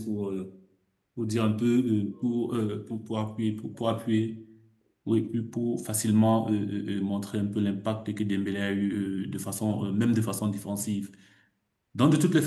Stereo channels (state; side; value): identical; both; correlation 1.00